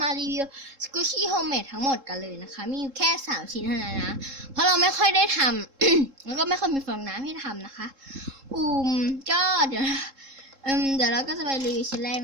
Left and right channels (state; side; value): late; left; 3.7 ms